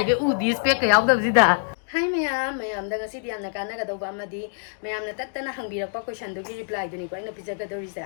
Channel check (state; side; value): silent; right; digital silence